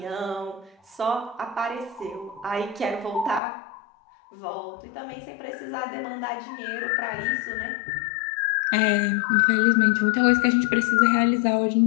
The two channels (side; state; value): right; drops out; at 3.4 s